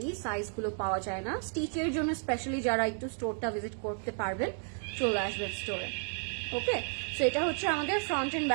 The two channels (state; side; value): silent; left; 56 dB below the other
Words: সাইজগুলো পাওয়া যায় না। স্টিচের জন্য স্পেশালি যারা একটু স্টোরটা ভিজিট করতে পারবেন, চলে আসবেন স্টোরে। ওকে, সো এটা হচ্ছে আমাদের ফ্রন্ট এন্ড